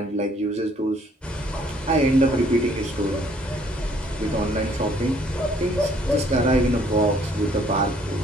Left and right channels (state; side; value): normal; both; correlation 0.62